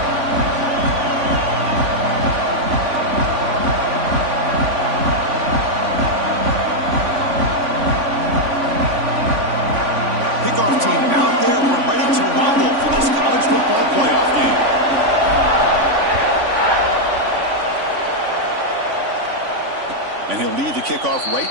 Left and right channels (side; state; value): left; late; 3.5 ms